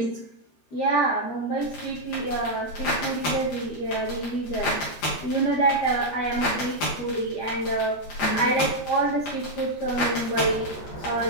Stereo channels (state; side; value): late; right; 13 ms